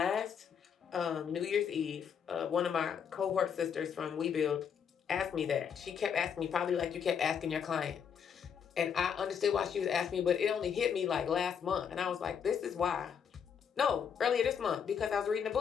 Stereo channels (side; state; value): right; quieter; 7.5 dB